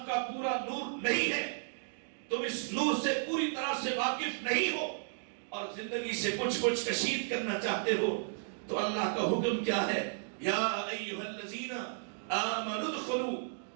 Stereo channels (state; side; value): silent; left; digital silence